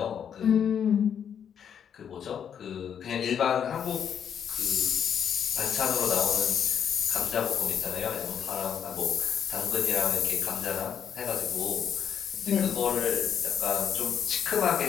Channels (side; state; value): right; quieter; 8.3 dB